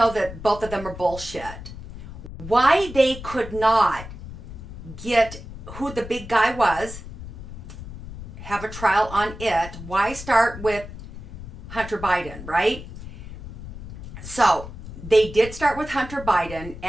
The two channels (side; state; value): left; noise; rumble, 12 dB below the sound